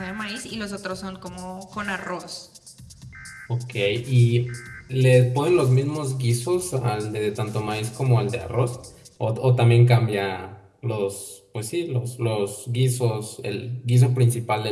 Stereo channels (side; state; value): both; identical; correlation 1.00